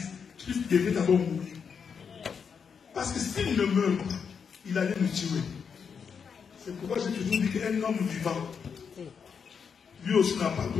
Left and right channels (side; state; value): right; quieter; 6.5 dB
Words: Christ devait d'abord mourir. Parce que s'il ne meurt pas, il allait nous tuer. C'est pourquoi j'ai toujours dit qu'un homme vivant, lui aussi n'a pas